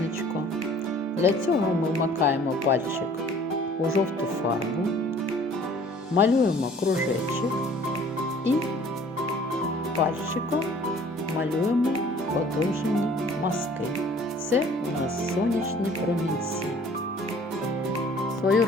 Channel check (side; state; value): both; normal; correlation 0.52